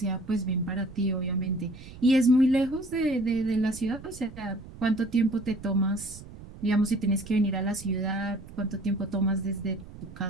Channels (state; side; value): noise; right; rumble, 16 dB below the sound